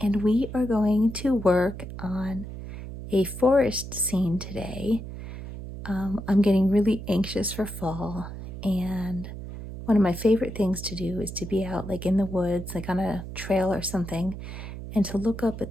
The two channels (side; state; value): right; noise; hum, 10 dB below the sound